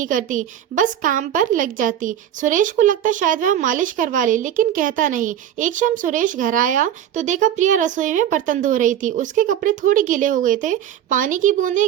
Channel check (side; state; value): left; quieter; 10.5 dB